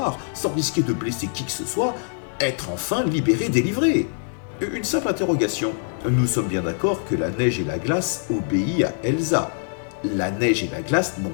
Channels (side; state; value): right; silent; digital silence